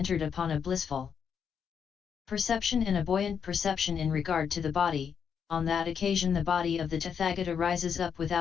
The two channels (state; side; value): quieter; right; 7.2 dB